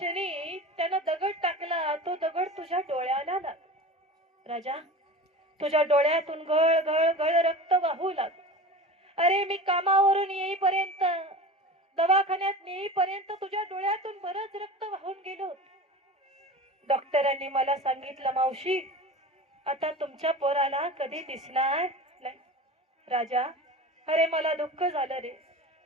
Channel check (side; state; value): both; normal; correlation 0.34